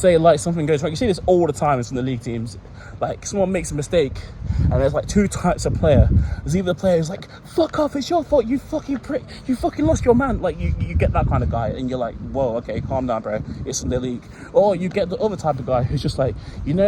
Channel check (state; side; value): identical; both; correlation 1.00